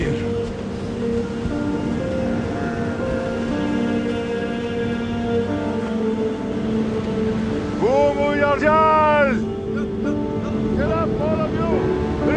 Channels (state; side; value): identical; both; correlation 1.00